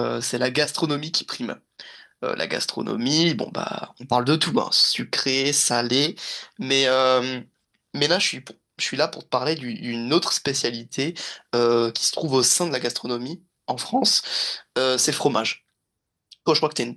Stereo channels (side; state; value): both; identical; correlation 1.00